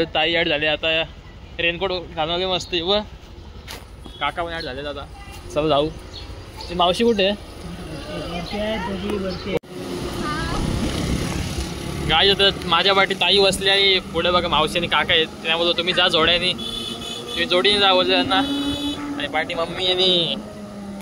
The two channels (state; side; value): identical; both; correlation 1.00